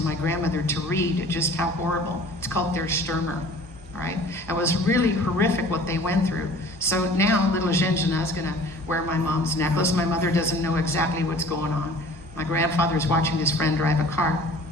my grandmother to read just how horrible. It's called Der Stürmer, all right? It was really horrific what they went through. So now little Zhenzhina is gonna wear my mom's necklace. My mother doesn't know exactly what's going on. My grandfather's watching his friend drive a car.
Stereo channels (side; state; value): both; normal; correlation 0.47